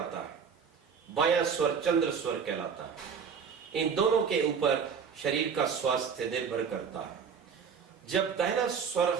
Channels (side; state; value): left; quieter; 6.5 dB